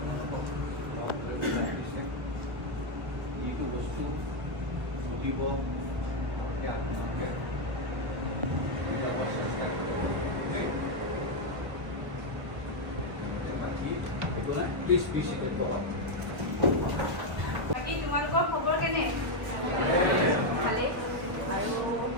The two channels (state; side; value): late; left; 1.1 ms